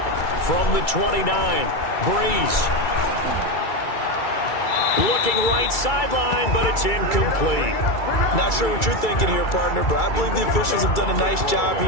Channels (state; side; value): late; right; 2.3 ms